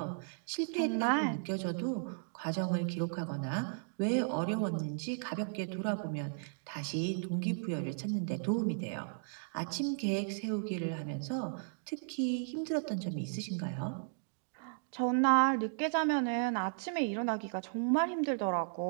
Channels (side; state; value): left; silent; digital silence